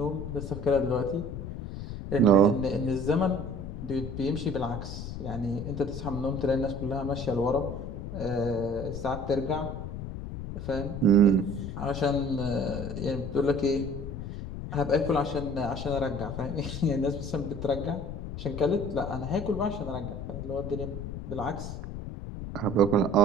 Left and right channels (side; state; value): left; noise; rumble, 7 dB below the sound